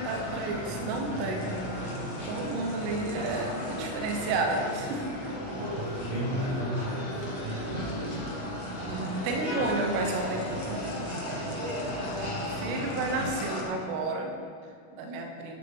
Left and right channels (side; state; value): left; late; 37 ms